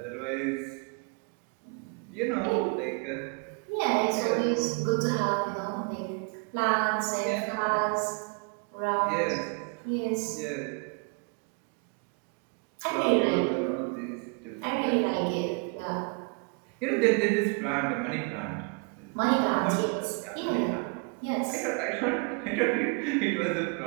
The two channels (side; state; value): left; quieter; 34.2 dB